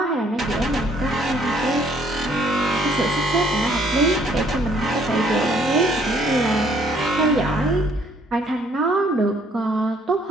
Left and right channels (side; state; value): both; normal; correlation 0.63